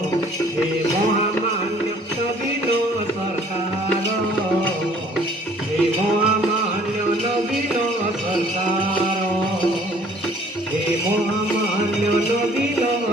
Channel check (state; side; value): normal; both; correlation 0.56